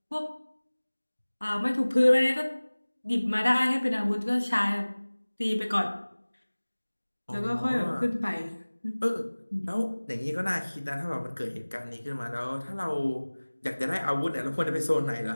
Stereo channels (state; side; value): inverted; both; correlation -1.00